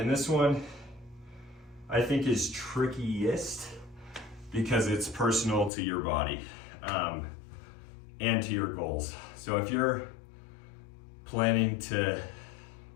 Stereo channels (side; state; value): right; drops out; at 5.7 s